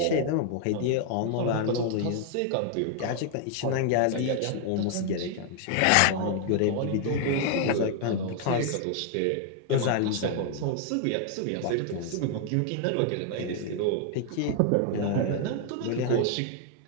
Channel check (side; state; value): both; different; correlation 0.00